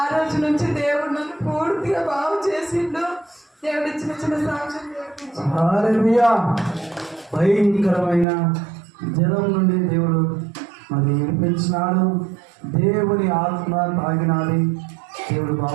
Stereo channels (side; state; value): left; drops out; at 8.2 s